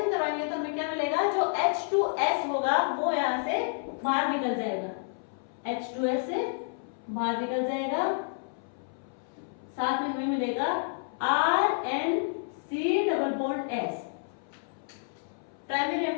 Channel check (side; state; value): right; silent; 58 dB below the other